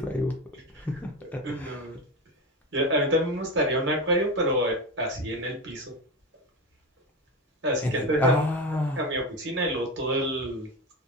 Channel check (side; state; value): both; normal; correlation 0.20